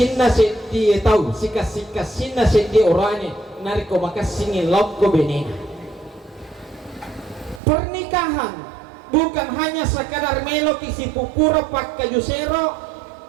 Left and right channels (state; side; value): drops out; left; at 7.6 s